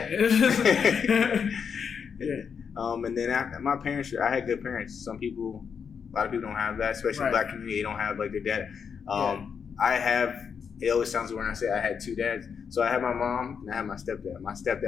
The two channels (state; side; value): quieter; right; 6.6 dB